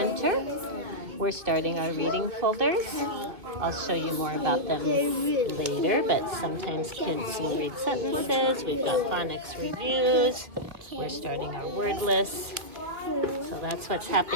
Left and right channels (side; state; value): left; late; 2.2 ms